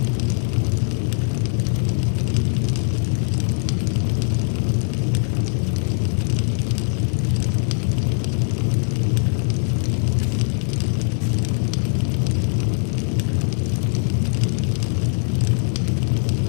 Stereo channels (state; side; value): silent; right; digital silence